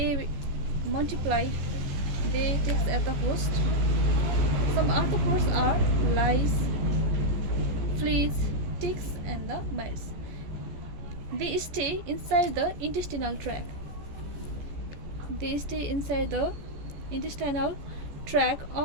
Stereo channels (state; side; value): late; left; 14 ms